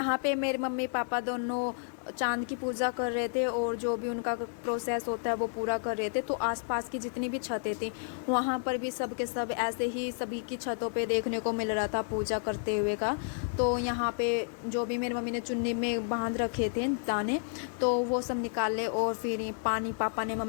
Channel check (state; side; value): silent; right; digital silence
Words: पे मेरे मम्मी पापा दोनों चांद की पूजा कर रहे थे और जो भी उनका प्रोसेस होता है वो पूरा कर रहे थे। तो आसपास की जितनी भी छतें थी वहाँ पर भी सब के सब ऐसे ही सभी की छतों पे देखने को मिल रहा था पूजा करते हुए का। तो यहाँ पे जो भी मेरी मम्मी ने चुन्नी में बांध रखे थे दाने, तो वो सब निकाले और फिर पानी पापा ने